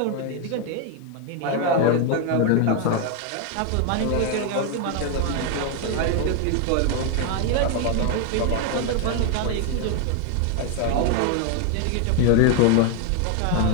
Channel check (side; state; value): both; different; correlation 0.01